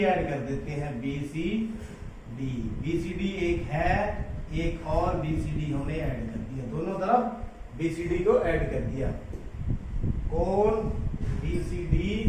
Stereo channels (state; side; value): identical; both; correlation 1.00